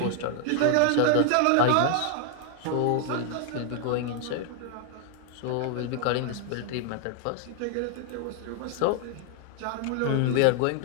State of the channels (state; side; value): different; both; correlation 0.00